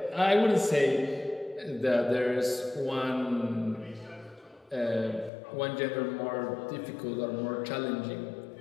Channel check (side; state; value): right; drops out; at 5.3 s